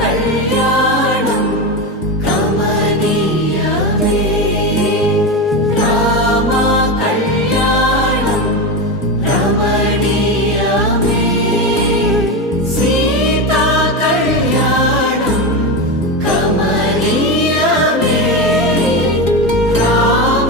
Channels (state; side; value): normal; both; correlation 0.17